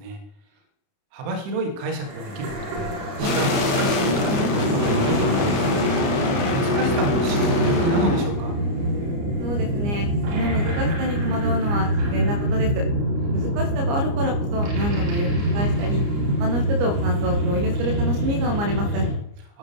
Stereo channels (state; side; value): late; left; 29 ms